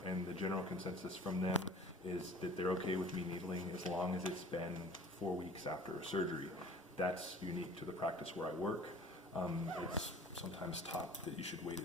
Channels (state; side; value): normal; both; correlation 0.46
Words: and the general consensus from them is that they're okay with me needling as long as it's been 4 weeks after a surgery. That's unique to the practice where I work. It's sometimes taught that you should wait